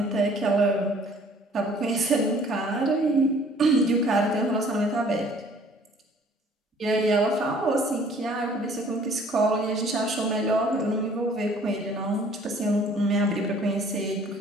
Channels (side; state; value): both; normal; correlation 0.55